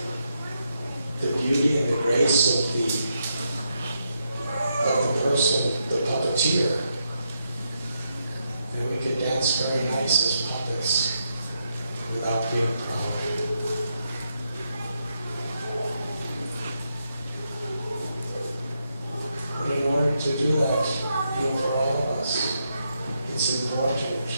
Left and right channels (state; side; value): inverted; both; correlation -0.81